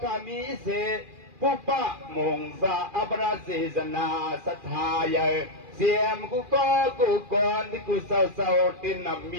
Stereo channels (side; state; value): left; late; 2.4 ms